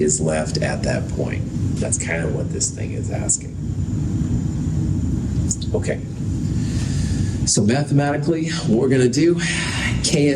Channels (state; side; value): identical; both; correlation 1.00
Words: left at that point? That's kind of what this thing is asking. Okay. So mathematically, what we're going to do,